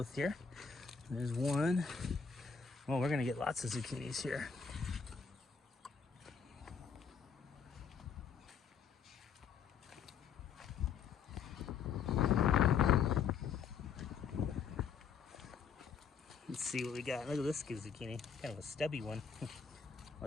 here. There's one. Well, we're going to get lots of zucchinis here. see what we got. Look at this zucchini, kind of a stubby one.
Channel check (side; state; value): right; quieter; 6.3 dB